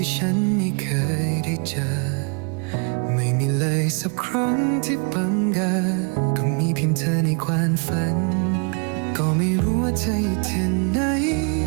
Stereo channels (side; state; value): left; quieter; 36.6 dB